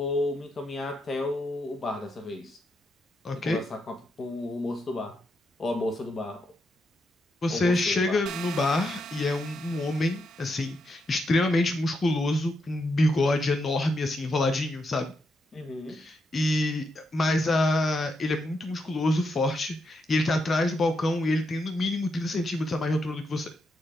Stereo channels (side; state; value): both; normal; correlation 0.82